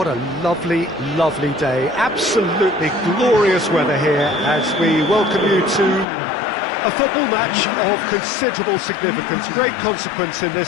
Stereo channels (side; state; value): right; drops out; at 6.1 s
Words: a lovely, lovely day. Absolutely glorious weather here as we welcome you to a football match of considerable significance, great consequence in